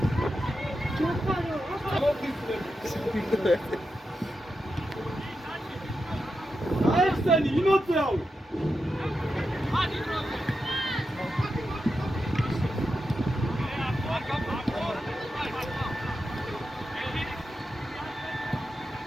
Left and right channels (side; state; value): both; normal; correlation 0.88